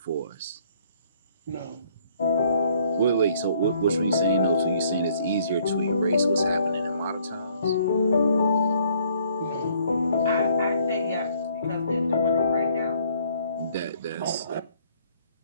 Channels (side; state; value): both; inverted; correlation -0.63